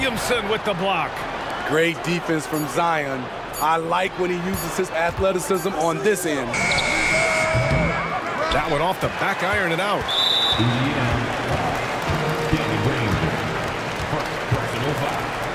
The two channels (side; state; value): both; identical; correlation 1.00